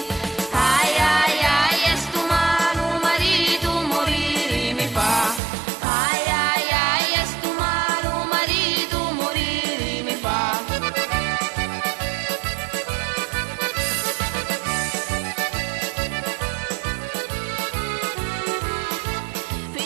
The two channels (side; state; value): left; drops out; at 5.4 s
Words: Ai ai ai, e sto malo marito morire mi fa. Ai ai ai, e sto malo marito morire mi fa.